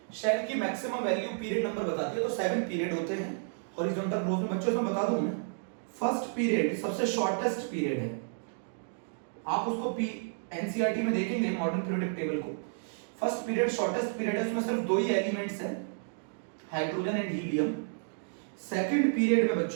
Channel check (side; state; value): left; silent; digital silence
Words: शेल की मैक्सिमम वैल्यू पीरियड नंबर बताती है, तो 7 पीरियड होते हैं हॉरिजॉन्टल ग्रोथ में। बच्चों इसमें बता दूं मैं, फर्स्ट पीरियड सबसे शॉर्टेस्ट पीरियड है, आप उसको एनसीईआरटी में देखेंगे मॉडर्न पीरियोडिक टेबल को। फर्स्ट पीरियड शॉर्टेस्ट पीरियड है, उसमें सिर्फ 2 ही एलिमेंट्स हैं, hydrogen and helium. Second period में